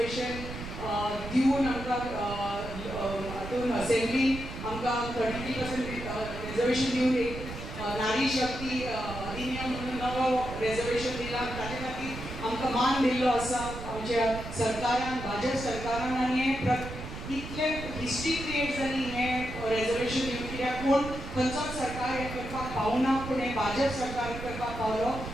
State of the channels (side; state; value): right; noise; rumble, 9 dB below the sound